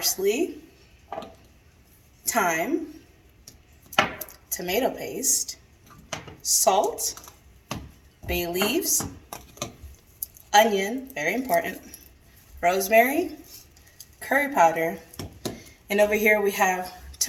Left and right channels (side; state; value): both; identical; correlation 1.00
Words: thyme, tomato paste, salt, bay leaves, onion, very important, rosemary, curry powder, and over here we have